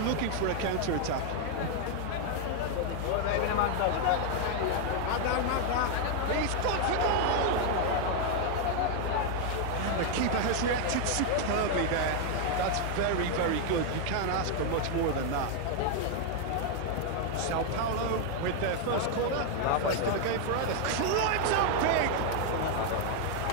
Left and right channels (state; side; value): different; both; correlation 0.00